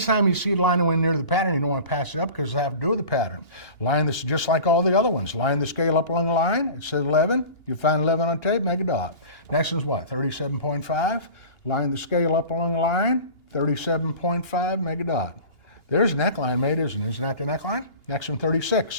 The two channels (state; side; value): late; right; 2.8 ms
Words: you see it line away near the pattern, you don't want to pass it up because it has to do with the pattern. Line this just like all the other ones. Line the scale up along the line. It says 11. You find 11 on tape, make a dot. Next is what? 37.5. Line the scale up along the line. 37.5, make a dot. There's a neckline made, isn't it? Isn't that the neckline? Next one,